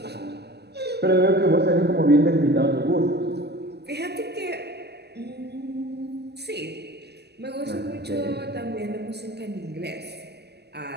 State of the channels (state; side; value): late; left; 0.48 ms